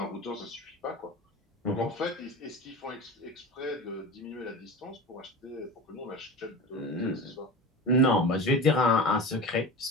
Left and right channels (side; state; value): both; normal; correlation 0.30